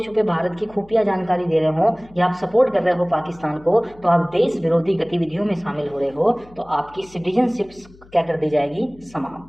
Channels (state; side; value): noise; left; hum, 24 dB below the sound